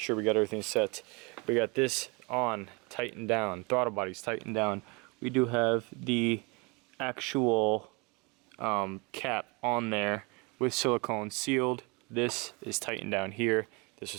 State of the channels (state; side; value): quieter; left; 28.6 dB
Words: sure we got everything set. We got this on, tightened down, throttle body's tightened down. We do have the actual cap on there with silicone sealed. This is tightened down here. This